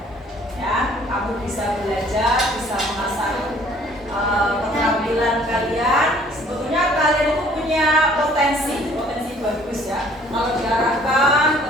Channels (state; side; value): normal; both; correlation 0.57